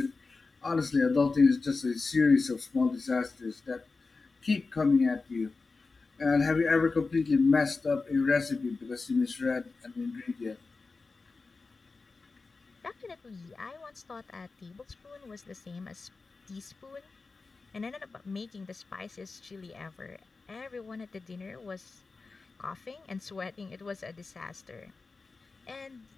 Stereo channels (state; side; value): quieter; right; 4.0 dB